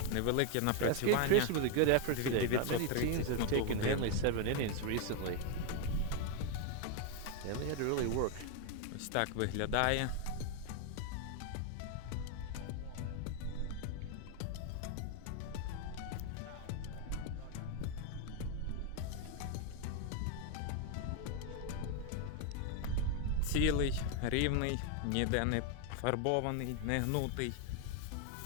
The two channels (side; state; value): both; different; correlation 0.01